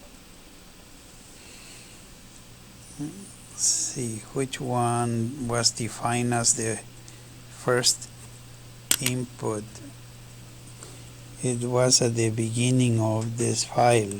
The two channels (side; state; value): both; identical; correlation 1.00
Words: let's see which one was defined as the first input. It was at the beginning of this file